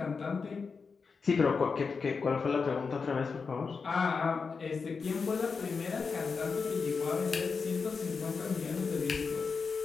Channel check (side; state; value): right; quieter; 5.1 dB